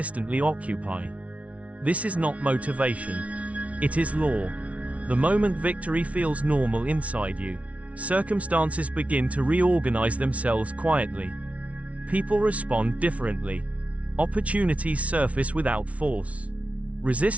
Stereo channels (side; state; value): left; late; 0.065 ms